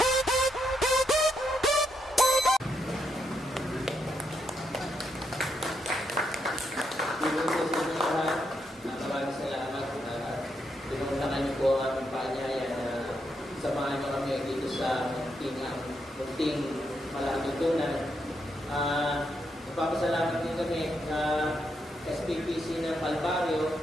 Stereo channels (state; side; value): normal; both; correlation 0.80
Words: Maraming salamat. Pinuntakan niyo po ang aming paanyaya na samahan niyo kami dito sa munting malatutunan. Nagpapasalamat din kami sa SPPC ng Calvario